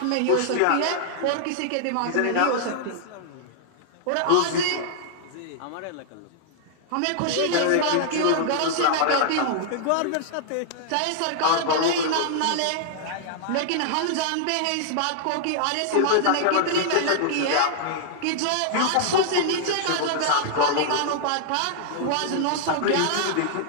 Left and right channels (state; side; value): different; both; correlation -0.01